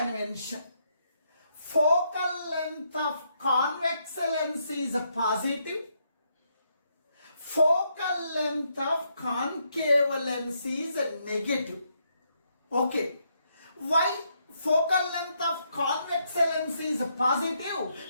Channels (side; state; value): both; inverted; correlation -0.76